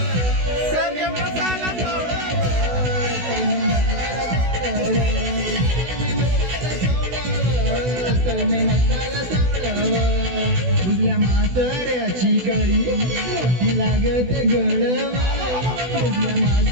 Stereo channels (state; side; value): late; left; 16 ms